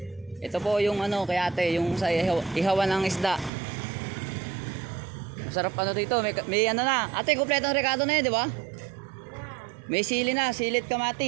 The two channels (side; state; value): left; drops out; at 3.5 s